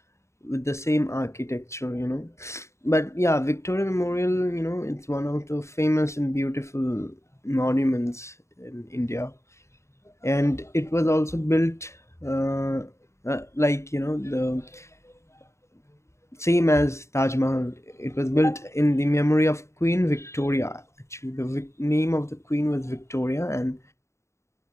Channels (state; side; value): late; right; 0.14 ms